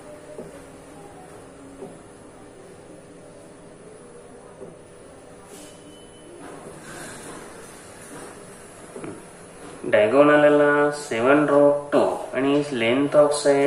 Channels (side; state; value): both; identical; correlation 1.00